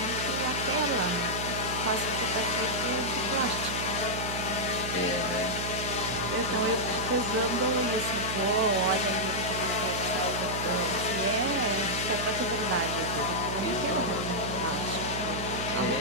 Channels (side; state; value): right; noise; hum, 5 dB below the sound